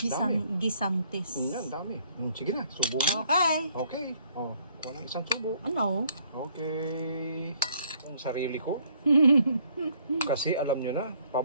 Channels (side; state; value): both; inverted; correlation -0.65